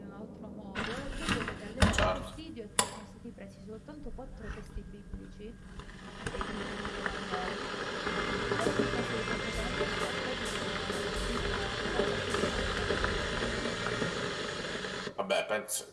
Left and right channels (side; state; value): both; identical; correlation 1.00